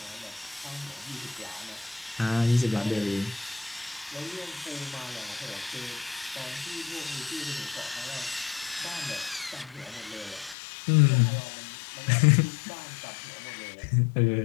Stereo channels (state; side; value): drops out; right; at 10.6 s